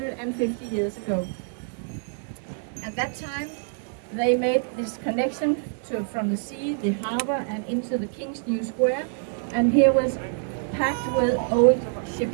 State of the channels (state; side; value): silent; left; 61 dB below the other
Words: years ago. At that time, they made this connection from the sea, the harbor, and into the King's New Square. And here was packed with old